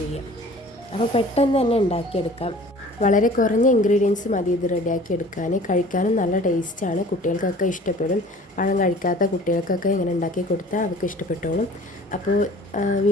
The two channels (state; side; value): normal; both; correlation 0.47